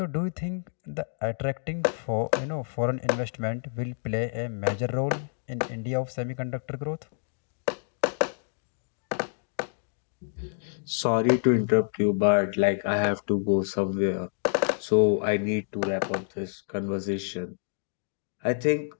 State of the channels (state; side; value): silent; right; digital silence